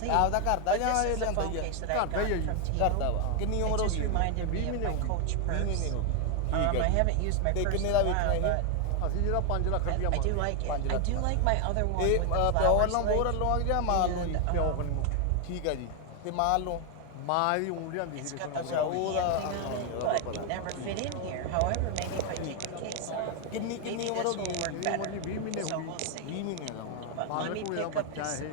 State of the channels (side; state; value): both; different; correlation 0.01